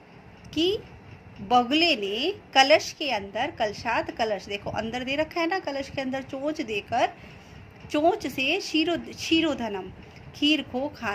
की बगुले ने कलश के अंदर, कलशात कलश देखो अंदर दे रखा है ना, कलश के अंदर चोंच देकर चोंच से क्षीरोधनम खीर को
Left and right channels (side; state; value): both; identical; correlation 1.00